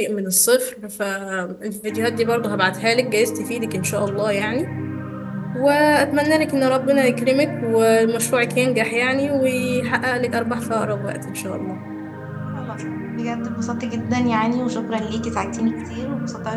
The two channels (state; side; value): identical; both; correlation 1.00